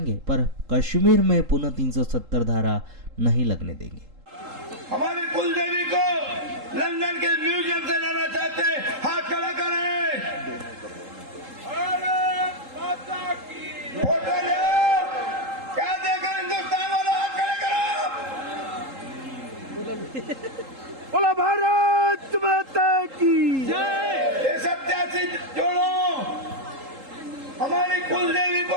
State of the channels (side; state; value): left; late; 3.8 ms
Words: पर कश्मीर में पुनः 370 धारा नहीं लगने देंगे। हमारी कुल देवी को लंदन के म्यूजियम से लाना चाहते हैं, हाथ खड़ा करें। फोटो ले, क्या देखो हिंदुस्तान वालों, हाथ खड़े करो। बोला भारत माता की जय। ये 87 जोड़ो, हमारी कुल देवी को